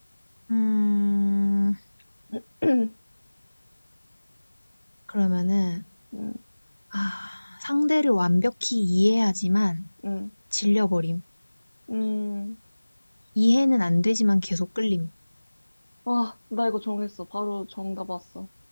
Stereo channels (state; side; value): inverted; both; correlation -1.00